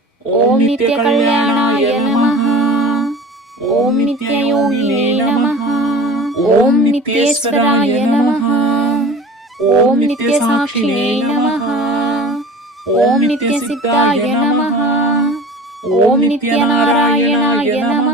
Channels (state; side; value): normal; both; correlation 0.41